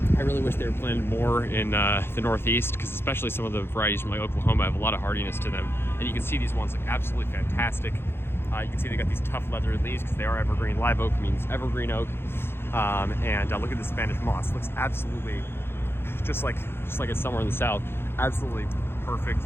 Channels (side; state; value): right; late; 0.11 ms